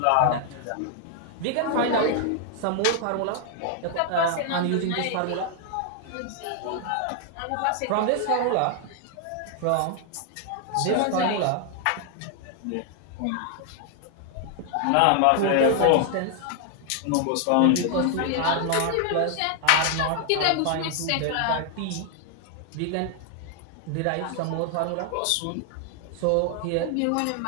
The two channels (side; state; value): both; different; correlation 0.00